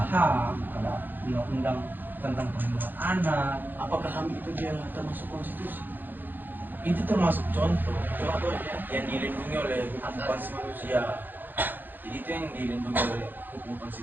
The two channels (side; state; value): left; late; 0.089 ms